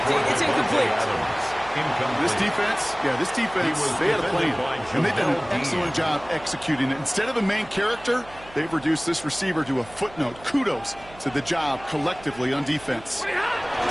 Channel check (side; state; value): right; noise; hum, 21 dB below the sound